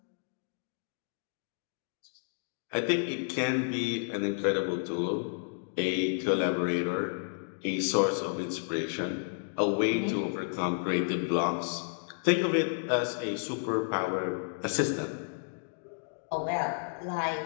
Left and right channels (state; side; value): silent; right; digital silence